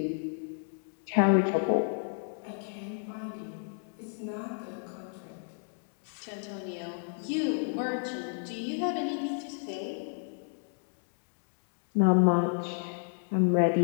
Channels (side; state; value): right; silent; 57 dB below the other